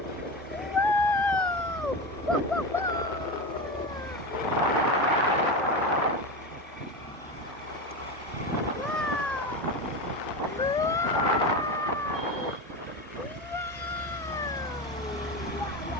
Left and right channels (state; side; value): normal; both; correlation 0.21